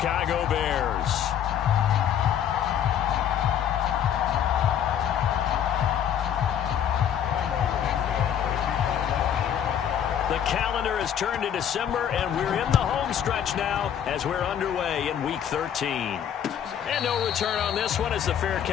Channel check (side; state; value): right; quieter; 9.3 dB